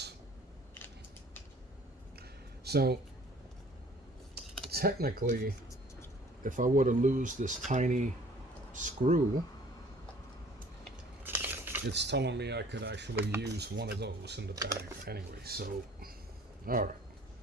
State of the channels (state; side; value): normal; both; correlation 0.53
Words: So technically, if I were to lose this tiny screw, it's telling me I could actually use one of those in the bag anyway. So, all right,